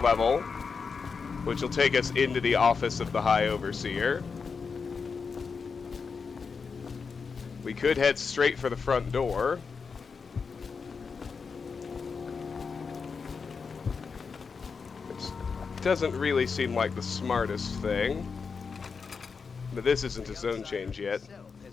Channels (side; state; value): right; quieter; 5.3 dB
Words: which will take us into the office of the High Overseer. We could head straight for the front door. Which doesn't really seem like the smartest thing. But this isn't a zone change yet.